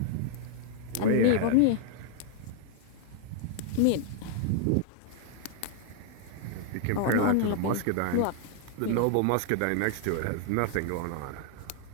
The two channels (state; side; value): different; both; correlation 0.00